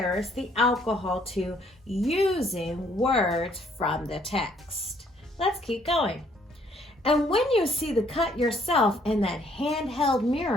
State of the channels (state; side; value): normal; both; correlation 0.65